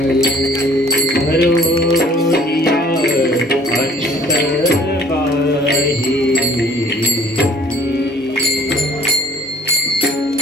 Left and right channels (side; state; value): both; normal; correlation 0.54